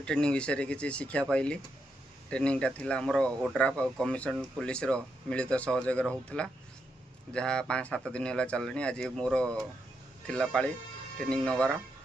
विषय किसी शिक्षा पाइली। ट्रेनिंगटा थिला हमर ओड्राफ और कमिशन पुलिस रो मिलित सहयोग होता जहाँ 5-7 दिन है चलनी। आज मोर थिला पाली ट्रेनिंग नवार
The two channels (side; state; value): both; normal; correlation 0.82